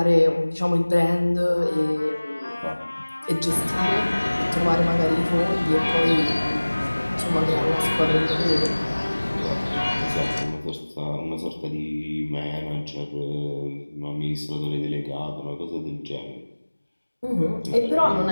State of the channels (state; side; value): inverted; both; correlation -1.00